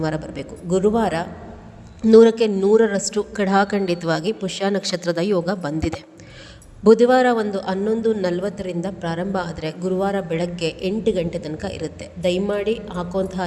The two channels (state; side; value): identical; both; correlation 1.00